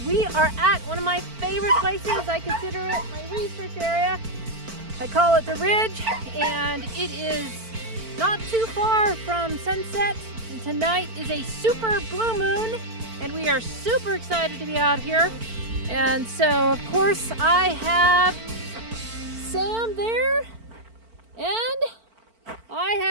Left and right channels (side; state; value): left; late; 4.5 ms